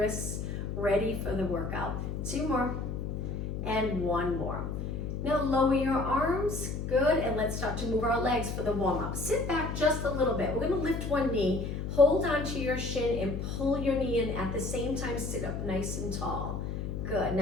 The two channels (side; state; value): left; noise; hum, 4 dB below the sound